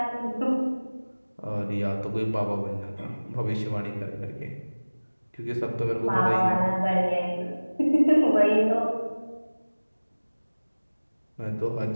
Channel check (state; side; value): inverted; both; correlation -1.00